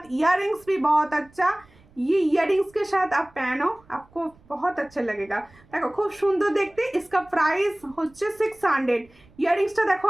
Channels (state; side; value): noise; right; rumble, 28 dB below the sound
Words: इयररिंग्स भी बहुत अच्छा, ये इयररिंग्स के साथ आप पहनो, आपको बहुत अच्छा लगेगा। देखो खूब सुंदर देखते। इसका प्राइस হচ্ছে 600। ইয়ারিংসটা দেখো